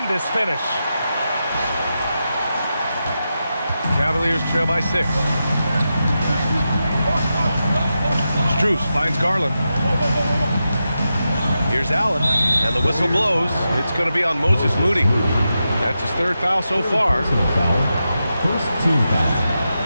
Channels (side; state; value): both; inverted; correlation -0.89